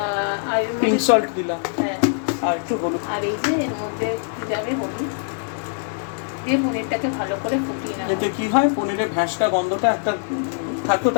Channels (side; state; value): right; silent; digital silence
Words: আর পিঙ্ক সল্ট দিলাম, হ্যাঁ, আর একটু হলুদ, আর এই যে এর মধ্যে যাবে হলুদ দিয়ে পনিরটাকে ভালো করে ফুটিয়ে নেওয়া। এতে কি হয়, পনিরের ভ্যাসটা গন্ধটা একটা থাকে,